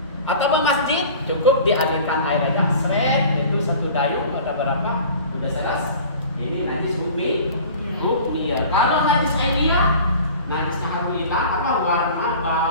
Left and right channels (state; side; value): inverted; both; correlation -0.43